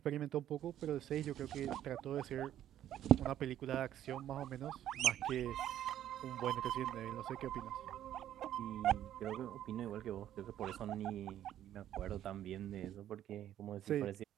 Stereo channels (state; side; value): quieter; left; 11.5 dB